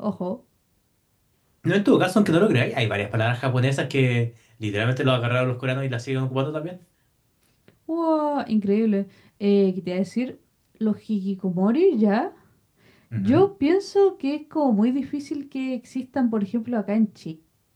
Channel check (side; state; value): both; identical; correlation 1.00